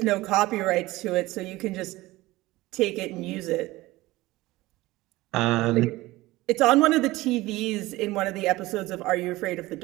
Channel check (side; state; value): left; quieter; 19.0 dB